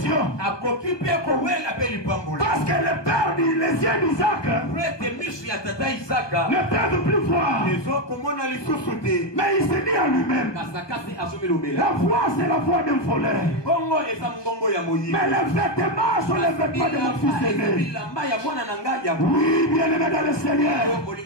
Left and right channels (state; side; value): late; right; 1.2 ms